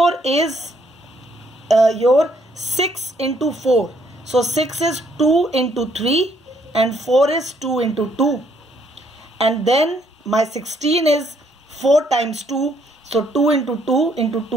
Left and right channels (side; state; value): both; normal; correlation 0.68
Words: is your 6 into 4. So 6 is 2 into 3 and 4 is 2 into 2. And then my 16 is 4 times 2. So 2 into 2 into